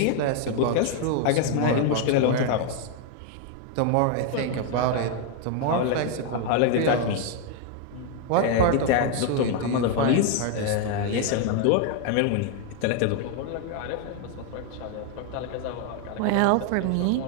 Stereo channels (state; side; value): different; both; correlation 0.00